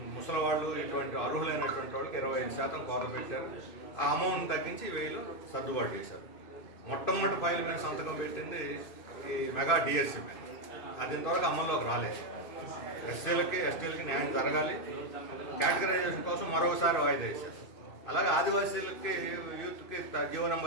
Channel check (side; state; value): right; late; 2.6 ms